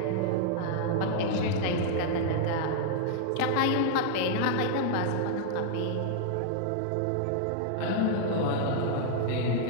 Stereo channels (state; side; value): different; both; correlation -0.01